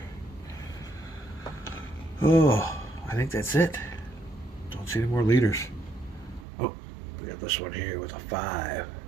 Oh, I think that's it. Don't see any more leaders. Oh, we got this one here with a 5.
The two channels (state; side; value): drops out; left; at 6.5 s